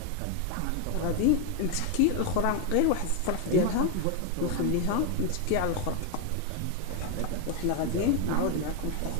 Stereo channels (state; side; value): different; both; correlation 0.01